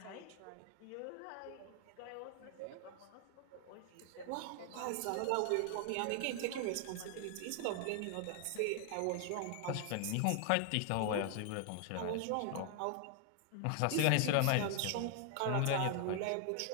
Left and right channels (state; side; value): different; both; correlation 0.00